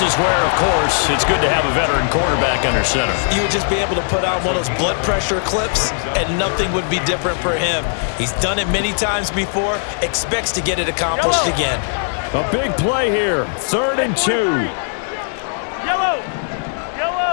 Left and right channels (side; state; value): right; silent; digital silence